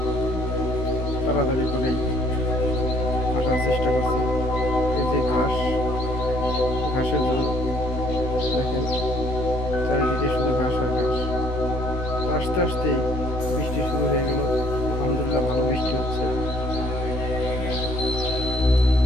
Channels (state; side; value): late; right; 16 ms